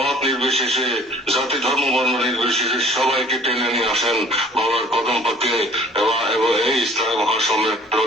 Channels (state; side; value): normal; both; correlation 0.51